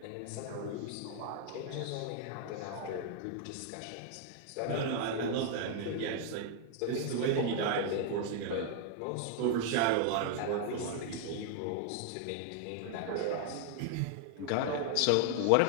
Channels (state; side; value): different; both; correlation 0.00